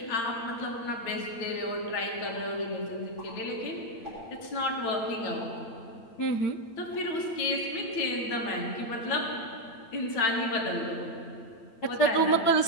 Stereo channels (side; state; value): right; late; 8.8 ms